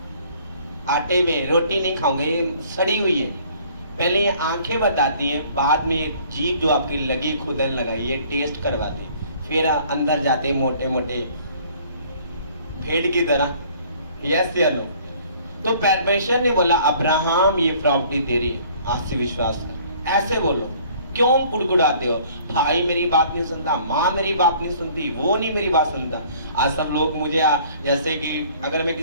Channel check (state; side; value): inverted; both; correlation -0.55